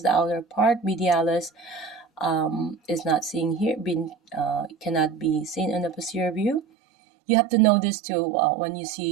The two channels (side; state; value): left; drops out; at 6.6 s